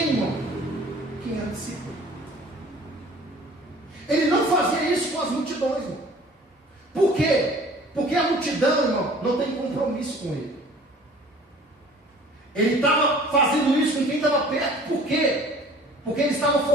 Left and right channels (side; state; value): both; normal; correlation 0.49